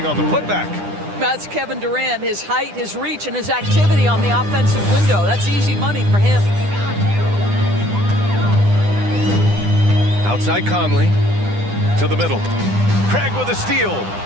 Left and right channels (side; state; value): left; late; 10 ms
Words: on the putback. That's Kevin Durant, his height, his reach, and his activity on the offensive window. That's easy money for him. Outside Conley to the middle. Craig with a steal.